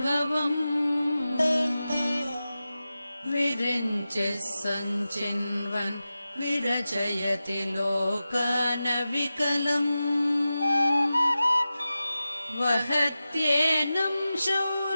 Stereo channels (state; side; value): inverted; both; correlation -0.94